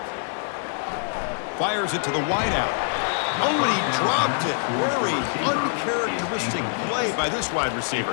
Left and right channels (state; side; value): silent; right; digital silence